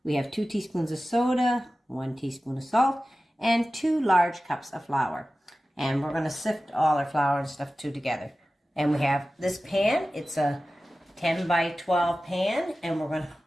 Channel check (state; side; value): normal; both; correlation 0.95